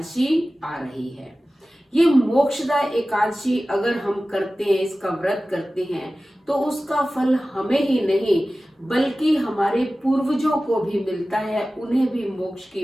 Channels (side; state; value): both; normal; correlation 0.96